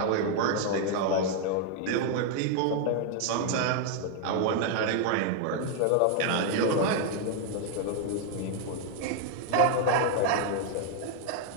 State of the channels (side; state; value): both; different; correlation 0.00